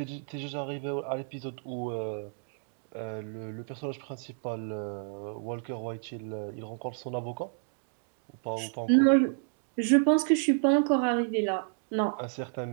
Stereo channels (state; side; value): silent; left; 57 dB below the other